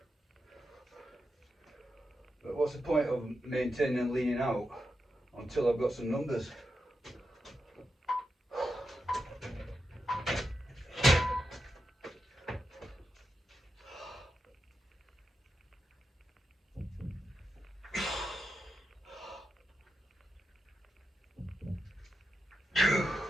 But what's the point of maintaining and leaning out until I've got some numbers?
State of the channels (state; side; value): normal; both; correlation 0.87